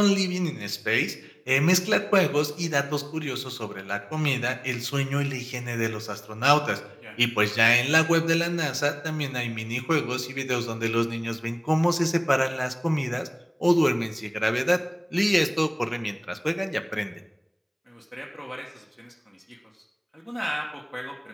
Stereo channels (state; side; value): identical; both; correlation 1.00